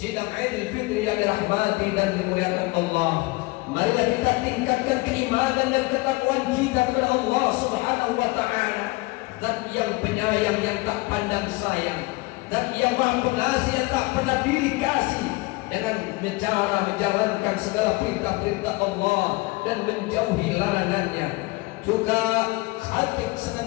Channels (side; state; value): right; quieter; 23.4 dB